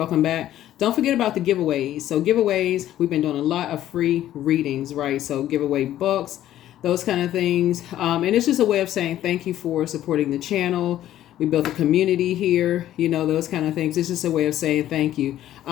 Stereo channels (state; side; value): quieter; right; 12.7 dB